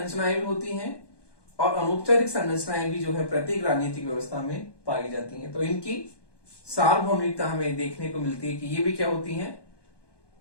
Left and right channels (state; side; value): late; right; 1.2 ms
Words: भी होती हैं और अनौपचारिक संरचनाएं भी जो है प्रत्येक राजनीतिक व्यवस्था में पाई जाती हैं। तो इनकी सार्वभौमिकता हमें देखने को मिलती है कि ये भी क्या होती है,